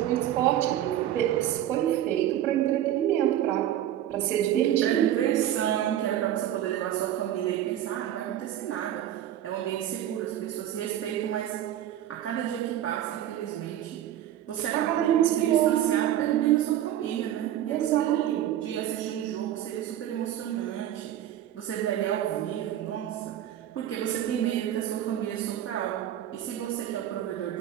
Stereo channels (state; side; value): quieter; left; 11.8 dB